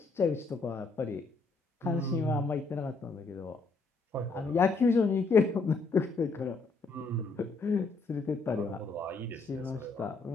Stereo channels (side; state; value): right; quieter; 3.9 dB